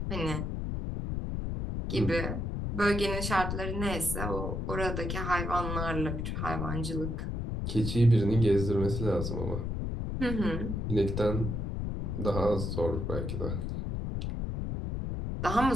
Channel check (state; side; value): noise; left; rumble, 2 dB below the sound